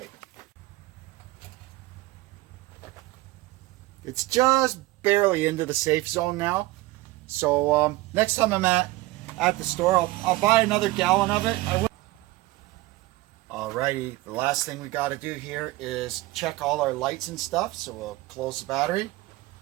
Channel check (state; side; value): quieter; left; 19.0 dB